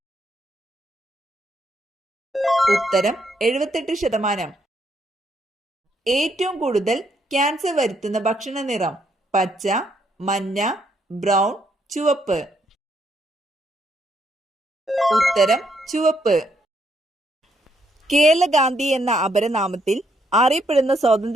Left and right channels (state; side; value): normal; both; correlation 0.74